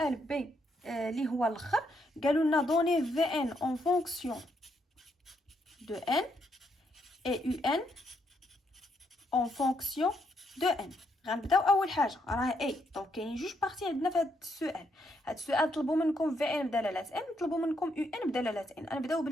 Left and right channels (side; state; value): both; normal; correlation 0.76